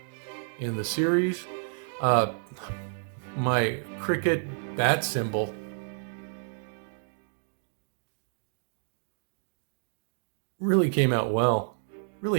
the series. My cricket bat symbol. Really came out well. Really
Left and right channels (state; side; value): silent; left; digital silence